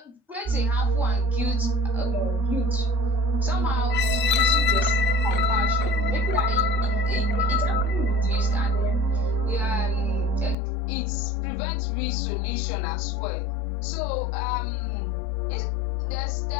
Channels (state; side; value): drops out; right; at 10.6 s